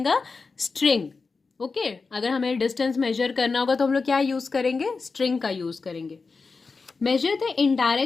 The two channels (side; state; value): right; quieter; 4.4 dB